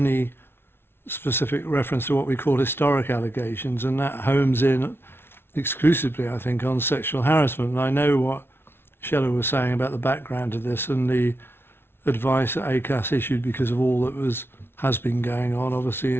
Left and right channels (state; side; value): late; right; 0.11 ms